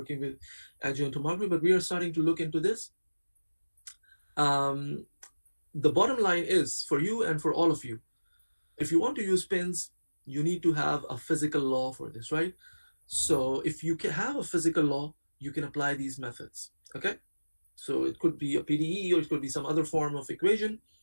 with adjoint tomography, but we are starting to look into this. um, the bottom line is for you and for all of you, if you want to use pins, you need to have a physical law for this, right? So if you can have a physical law, you can apply these methods. Okay. So it could be a PDE or it could be some other form of equation.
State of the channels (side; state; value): both; inverted; correlation -1.00